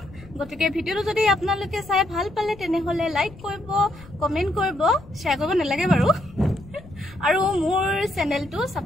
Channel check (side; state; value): left; noise; rumble, 20 dB below the sound